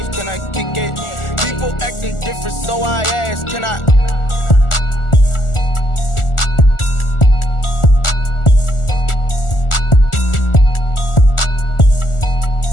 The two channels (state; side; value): late; right; 1.4 ms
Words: can I kick it? People acting different, so I ask, can I?